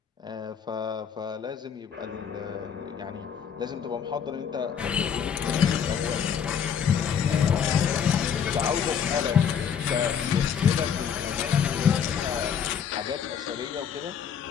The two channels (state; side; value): quieter; right; 7.7 dB